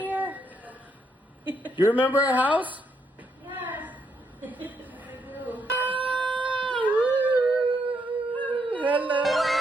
You remember our house? Yes. Hello!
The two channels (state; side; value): normal; both; correlation 0.76